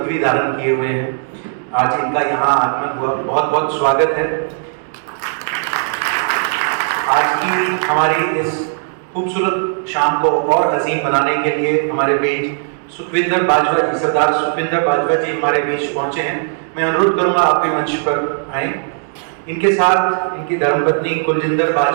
धारण किए हुए हैं। आज इनका यहाँ आगमन हुआ, बहुत बहुत स्वागत है। आज की हमारी इस खूबसूरत शाम को और हसीन बनाने के लिए हमारे बीच सुखविंदर बाजवा जी, सरदार सुखविंदर बाजवा जी हमारे बीच पहुंचे हैं। मैं अनुरोध करूंगा आप भी मंच पर आए। इनके साथ इनकी धर्मपत्नी कुलजिंदर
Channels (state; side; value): silent; left; digital silence